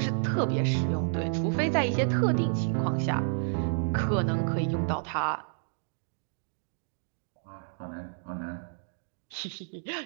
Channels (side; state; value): left; silent; digital silence